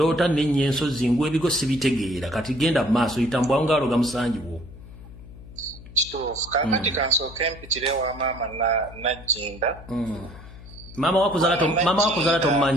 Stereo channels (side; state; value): left; noise; hum, 17 dB below the sound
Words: nennya ensozi ngwa ebigo sibitegeera kati genda mu maaso yitambwawo ng'aloga musanjiwo kituufu kakati kansooke mpitire wa maama Najjinda maama wakuzaala